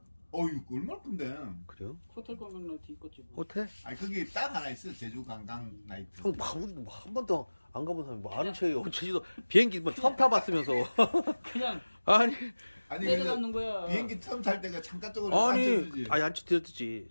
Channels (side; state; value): both; inverted; correlation -1.00